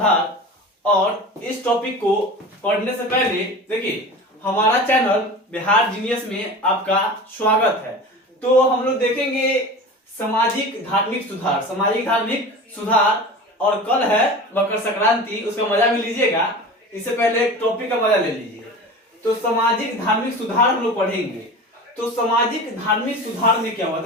और इस टॉपिक को पढ़ने से पहले देखिए, हमारा चैनल बिहार जीनियस में आपका स्वागत है। तो हम लोग देखेंगे सामाजिक धार्मिक सुधार। सामाजिक धार्मिक सुधार, और कल है मकर संक्रांति, उसका मजा भी लीजिएगा। इससे पहले एक टॉपिक का मजा ले लीजिए। तो सामाजिक धार्मिक सुधार हम लोग पढ़ेंगे। तो सामाजिक धार्मिक सुधार में क्या हुआ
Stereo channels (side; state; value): both; normal; correlation 0.34